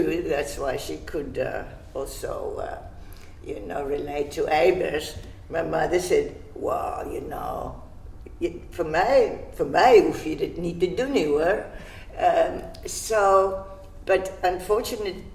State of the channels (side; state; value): both; identical; correlation 1.00